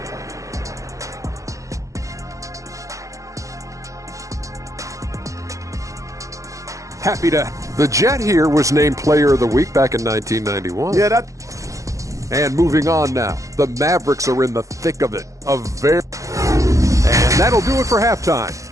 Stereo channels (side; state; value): left; late; 0.15 ms